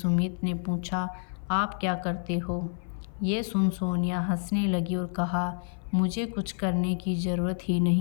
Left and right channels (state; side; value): silent; right; 55 dB below the other